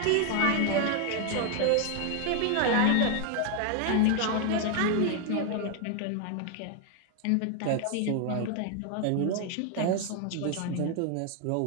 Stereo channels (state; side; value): different; both; correlation 0.00